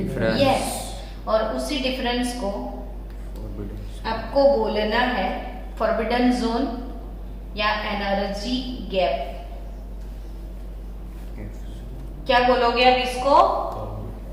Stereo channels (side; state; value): both; identical; correlation 1.00